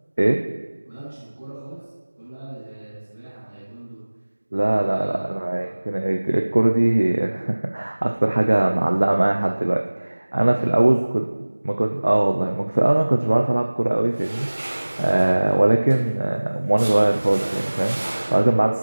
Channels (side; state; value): both; inverted; correlation -1.00